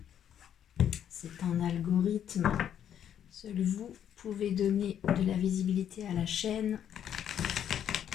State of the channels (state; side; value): quieter; right; 9.6 dB